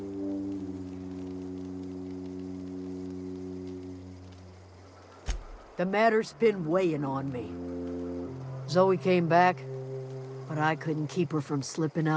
The matter's been weighing on me. Zoe came back, but I couldn't keep her from slipping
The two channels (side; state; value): both; identical; correlation 1.00